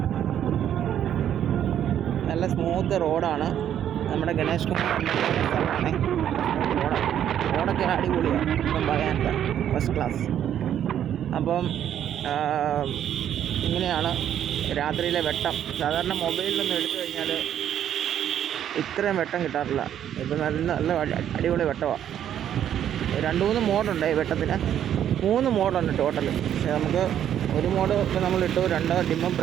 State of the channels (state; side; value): quieter; left; 10.2 dB